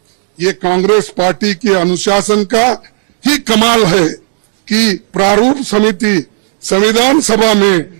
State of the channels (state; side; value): silent; left; digital silence